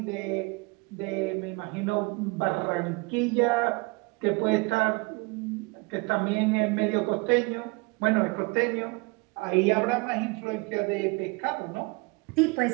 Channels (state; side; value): quieter; left; 27.2 dB